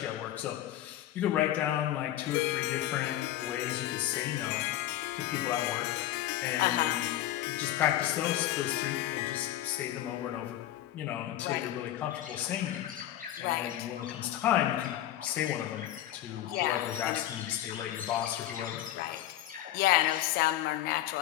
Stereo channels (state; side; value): quieter; right; 13.3 dB